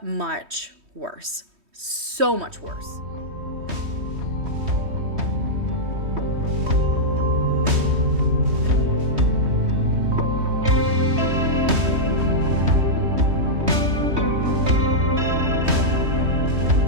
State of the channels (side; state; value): left; late; 3.1 ms